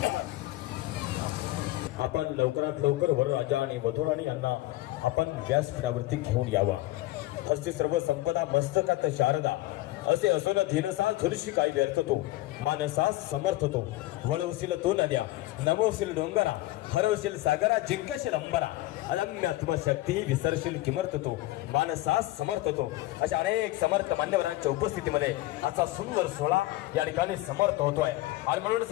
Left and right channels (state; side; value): quieter; right; 17.6 dB